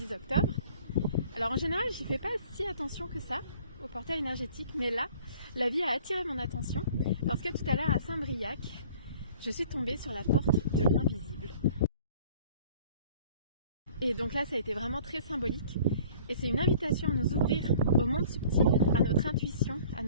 octobre. Alors en général j'y fais pas si attention que ça au portail énergétique, mais là la vie a attiré mon attention parce que tout à l'heure à Saint-Briac je suis tombée sur la porte de l'invisible. Et donc là ça a été vraiment très symbolique et c'est une invitation à nous ouvrir au monde subtil, à notre intuition, à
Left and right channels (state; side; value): inverted; both; correlation -0.51